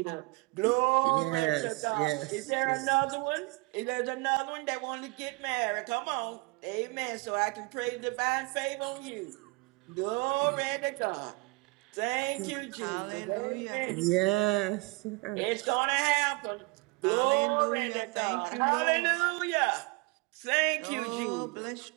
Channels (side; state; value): left; quieter; 27.1 dB